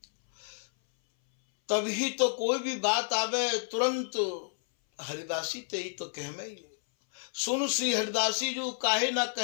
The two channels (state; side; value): silent; right; 58 dB below the other